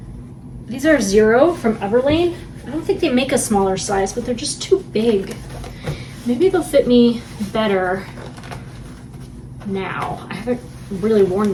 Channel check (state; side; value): identical; both; correlation 1.00